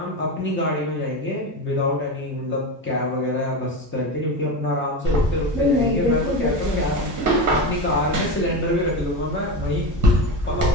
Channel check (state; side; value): normal; both; correlation 0.21